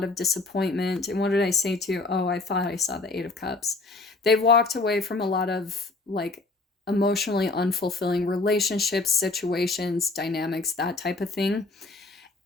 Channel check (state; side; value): quieter; right; 3.4 dB